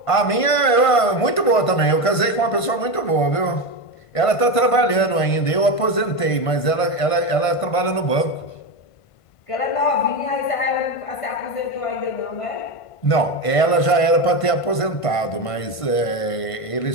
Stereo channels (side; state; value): right; late; 1.5 ms